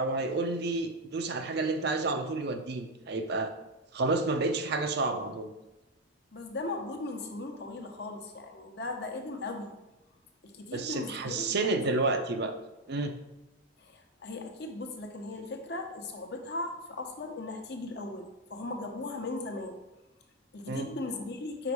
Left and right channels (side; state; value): both; normal; correlation 0.06